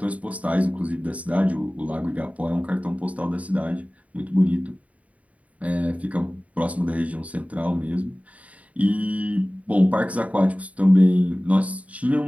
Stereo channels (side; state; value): left; late; 0.068 ms